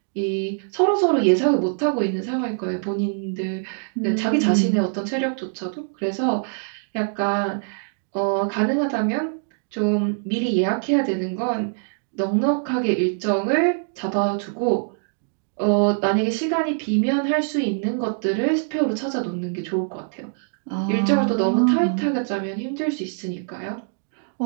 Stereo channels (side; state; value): left; silent; digital silence